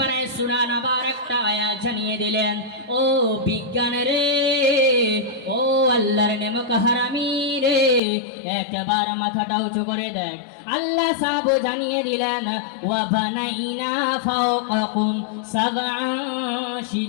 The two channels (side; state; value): right; drops out; at 8.0 s